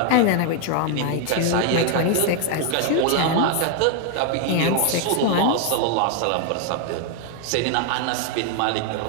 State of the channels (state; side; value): different; both; correlation 0.00